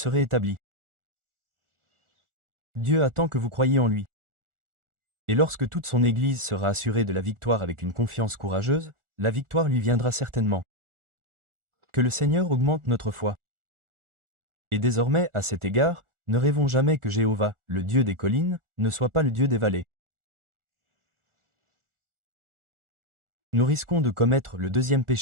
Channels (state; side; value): late; left; 1.4 ms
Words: établis. Dieu attend que vous croyiez en lui. Et lorsque toute son Église sera assurée de la victoire avec une confiance courageuse, la victoire lui viendra certainement. Que le Seigneur augmente notre foi. Et désormais, à cet égard, ne rêvons jamais que Jéhovah, le Dieu des collines, ne soit pas le Dieu des vallées. Nous risquons de commettre le deuxième